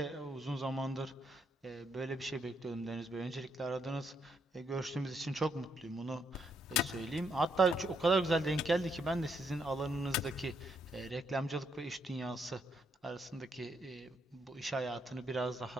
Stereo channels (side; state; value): both; normal; correlation 0.76